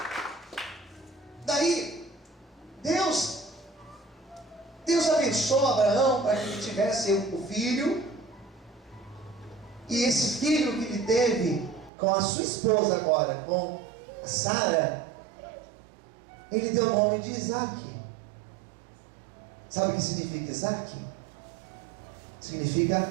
Daí, Deus abençoou Abraão para que ele tivesse o filho, e esse filho que ele teve com a sua esposa agora, com a Sara, ele deu o nome de Isaac. Sabe o que significa Isaac?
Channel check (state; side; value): drops out; left; at 11.9 s